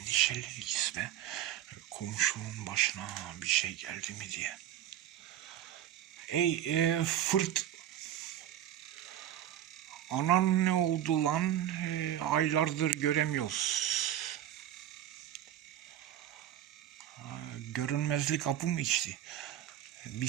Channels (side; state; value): left; quieter; 11.5 dB